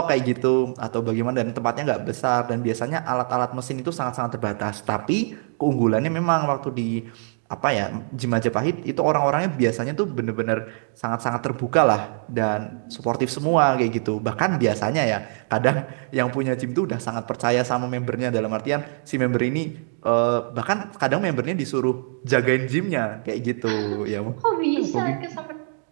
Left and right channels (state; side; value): silent; left; 62 dB below the other